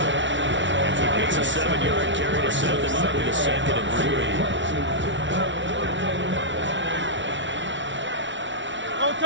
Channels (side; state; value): left; late; 0.55 ms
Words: It's a 7-yard carry to set them up with a 2nd and 3.